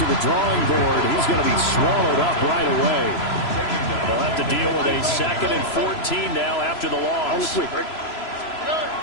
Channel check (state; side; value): late; right; 3.0 ms